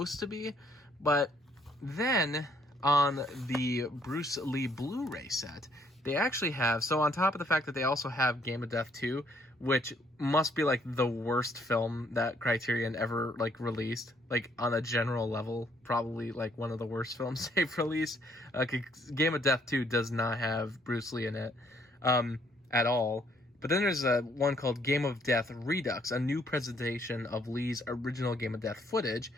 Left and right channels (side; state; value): both; normal; correlation 0.67